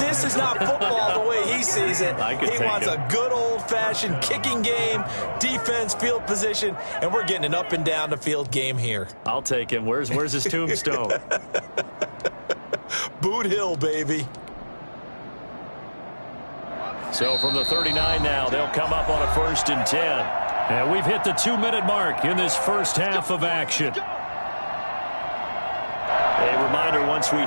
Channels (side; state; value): both; inverted; correlation -1.00